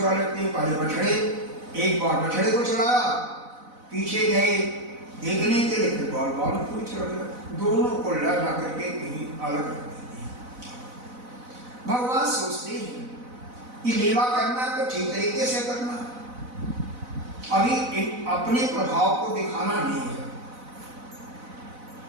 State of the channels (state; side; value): late; left; 4.0 ms